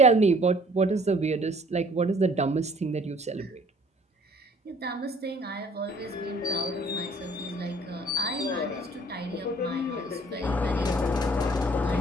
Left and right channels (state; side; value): normal; both; correlation 0.56